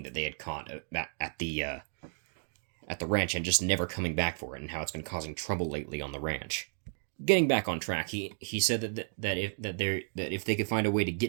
that they had caught at the ranch, and just never coming back for it, and how it's been causing trouble lately on the ranch. Getting back on track, he said that if they could find a way to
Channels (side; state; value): left; silent; digital silence